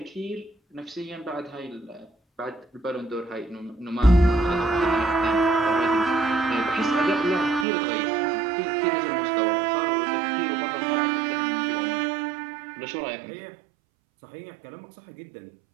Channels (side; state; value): left; drops out; at 7.7 s